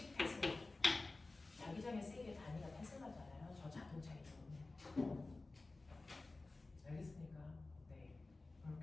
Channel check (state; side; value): quieter; right; 3.3 dB